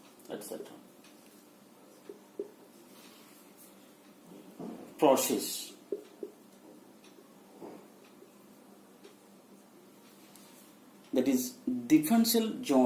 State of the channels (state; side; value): identical; both; correlation 1.00